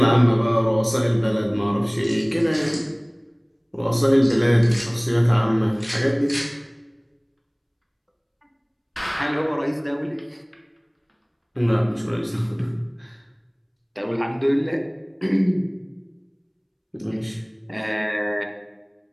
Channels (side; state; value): both; identical; correlation 1.00